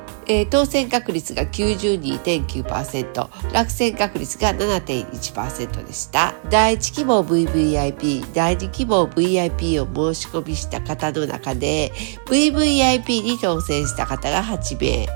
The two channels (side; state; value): left; silent; digital silence